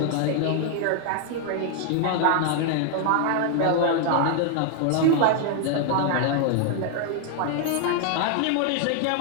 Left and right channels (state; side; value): different; both; correlation 0.00